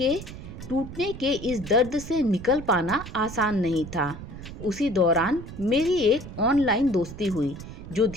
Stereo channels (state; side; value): noise; right; rumble, 12 dB below the sound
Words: टूटने के इस दर्द से निकल पाना आसान नहीं था। उसी दौरान मेरी एक ऑनलाइन दोस्ती हुई जो